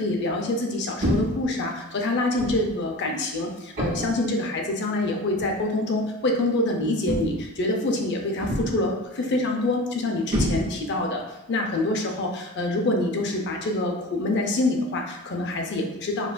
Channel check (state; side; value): normal; both; correlation 0.35